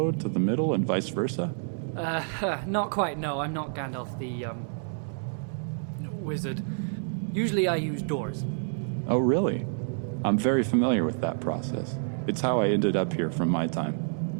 to the middle and vice versa? Not quite, no. I'm not Gandalf the, wizard. Usually I use doors. Oh, really? I'm very familiar with that process. It's how I ended up here from my time.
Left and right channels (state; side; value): silent; left; digital silence